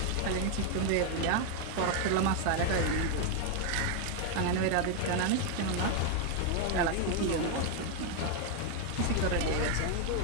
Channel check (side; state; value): both; different; correlation 0.01